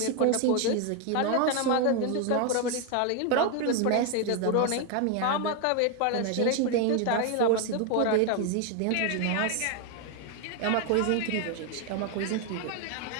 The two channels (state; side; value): different; both; correlation 0.01